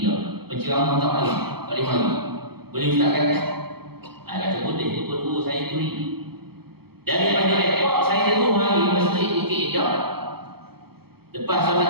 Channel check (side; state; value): left; late; 0.96 ms